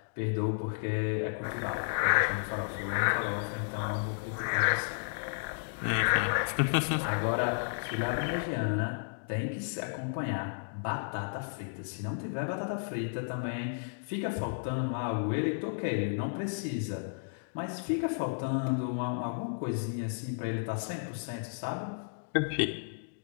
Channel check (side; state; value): right; silent; digital silence